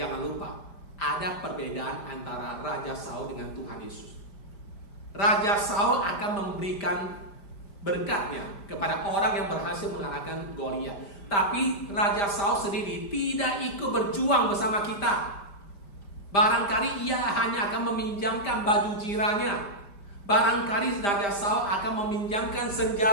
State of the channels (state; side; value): late; right; 5.0 ms